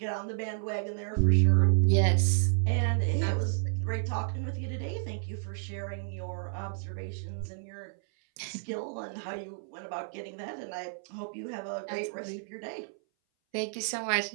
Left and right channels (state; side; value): silent; left; 57 dB below the other